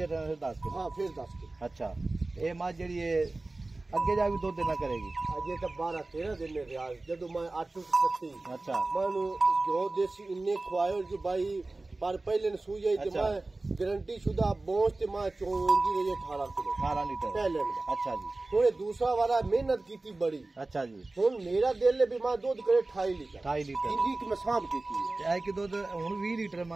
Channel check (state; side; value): quieter; left; 3.1 dB